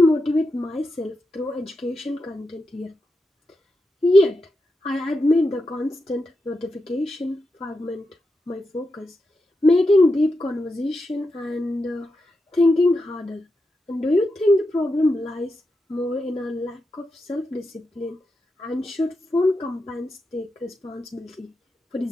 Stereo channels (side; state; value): both; normal; correlation 0.88